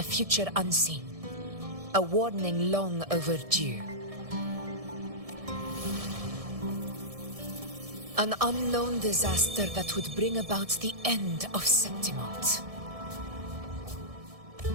future unseen, a warning long overdue. An unknown disaster that would bring about the end of Septimont.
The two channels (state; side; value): late; left; 1.7 ms